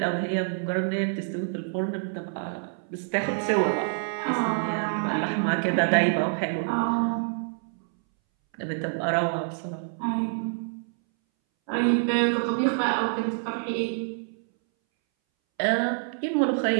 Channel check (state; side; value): silent; left; 60 dB below the other